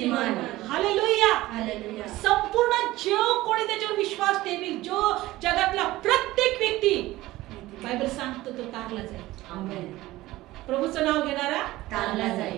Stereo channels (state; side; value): quieter; left; 17.5 dB